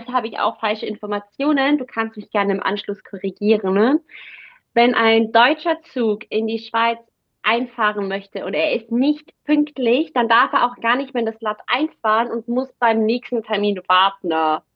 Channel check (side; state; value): both; identical; correlation 1.00